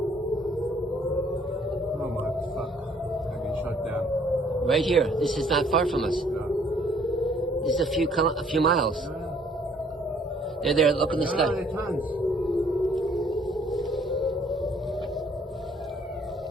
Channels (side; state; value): both; normal; correlation 0.62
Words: Oh my fuck. I've been shot down. Right here. This is not far from us. No. This is a few miles. No. They're there. Look in the No, sky. they're tons.